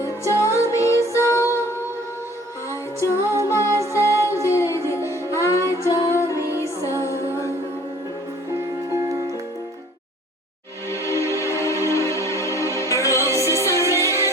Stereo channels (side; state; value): both; normal; correlation 0.52